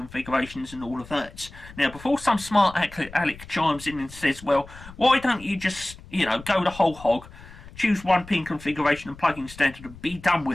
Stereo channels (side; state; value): left; noise; rumble, 18 dB below the sound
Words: and all of that. Now, before some smart Alec chimes in and says, well, why don't you just, you know, go the whole hog, choose one pin configuration and plugging standard and be done